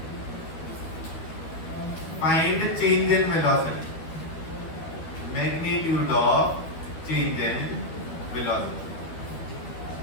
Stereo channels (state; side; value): late; right; 12 ms